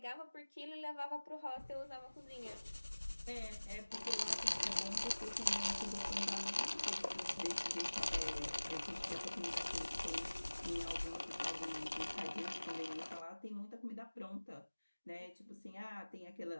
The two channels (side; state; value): both; inverted; correlation -1.00